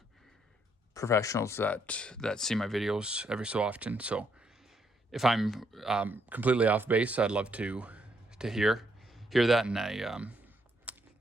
professionals that see my videos every so often. So if I'm completely off base, I'd love to hear that, and I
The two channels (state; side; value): normal; both; correlation 0.74